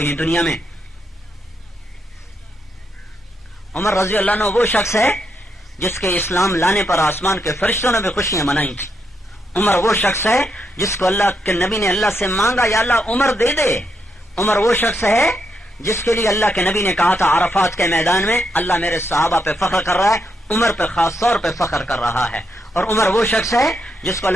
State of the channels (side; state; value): both; normal; correlation 0.81